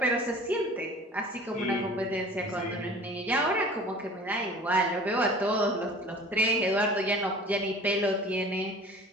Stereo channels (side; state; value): both; normal; correlation 0.44